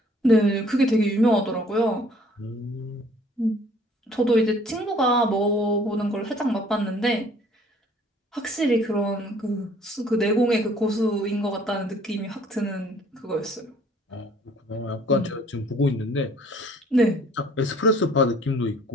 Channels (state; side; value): normal; both; correlation 0.57